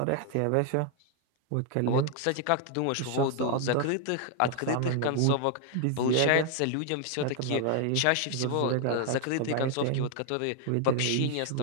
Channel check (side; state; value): both; different; correlation 0.00